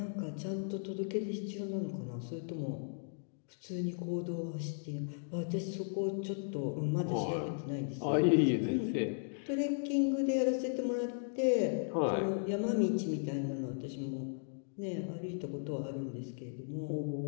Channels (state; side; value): silent; right; digital silence